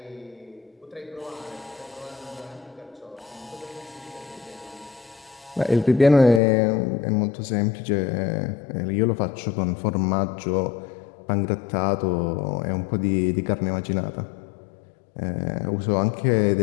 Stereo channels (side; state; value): right; drops out; at 6.4 s